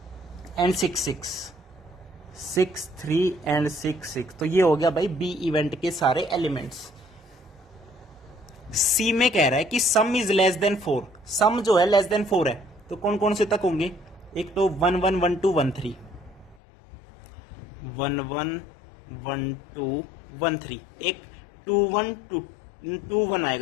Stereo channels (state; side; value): drops out; right; at 16.6 s